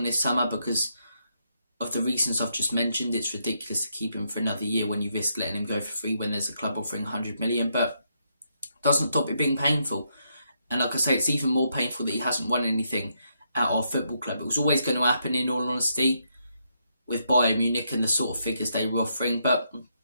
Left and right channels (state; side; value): inverted; both; correlation -0.78